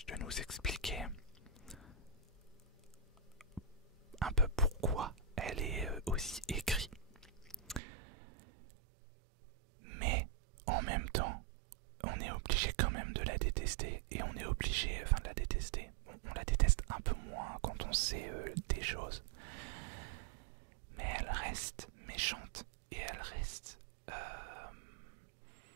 de nous expliquer un peu pourquoi elle est aussi écrite. Mais en même temps, on est obligé quand même de la détester. Et on est obligé, enfin de la détester. On la déteste un peu moins quand on sait des choses. Mais elle reste méchante. Et elle reste...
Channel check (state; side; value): drops out; left; at 7.8 s